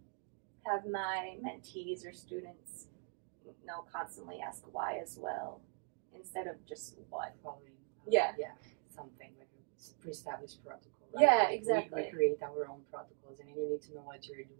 have my mentees or students, constantly ask why as well, instead of just what. Following, yeah, something like a pre-established protocol. Right? Yeah, exactly. We create our own protocols, and you need to know what you're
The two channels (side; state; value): left; silent; 51 dB below the other